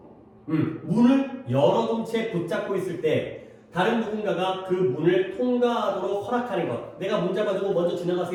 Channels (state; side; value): identical; both; correlation 1.00